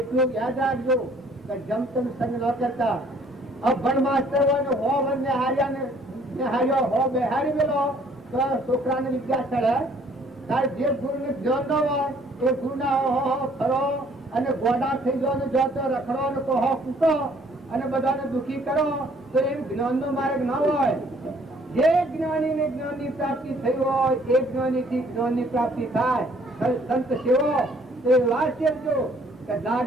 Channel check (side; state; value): both; normal; correlation 0.60